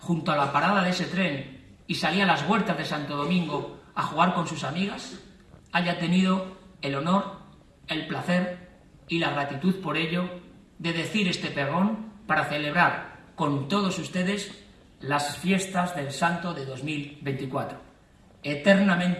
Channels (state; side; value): identical; both; correlation 1.00